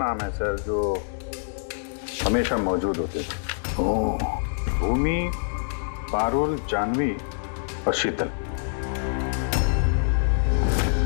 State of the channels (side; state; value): right; silent; digital silence